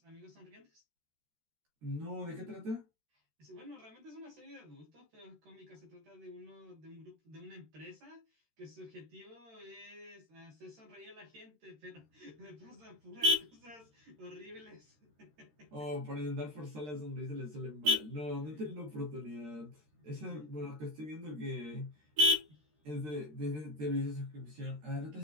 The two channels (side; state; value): left; late; 13 ms